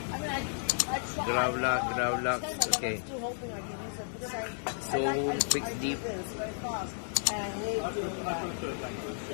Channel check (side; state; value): right; silent; digital silence